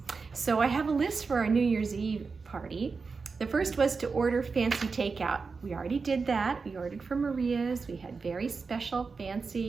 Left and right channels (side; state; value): left; quieter; 4.7 dB